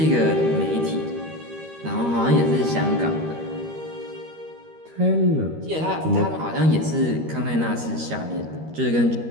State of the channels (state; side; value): late; left; 13 ms